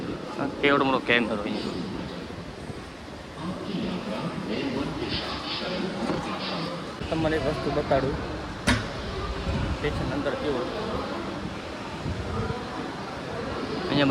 કેવડો મોટો કેમેરો અહીંયા. તમને એક વસ્તુ બતાડું, સ્ટેશન અંદર કેવું. અહીંયા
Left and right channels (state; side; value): identical; both; correlation 1.00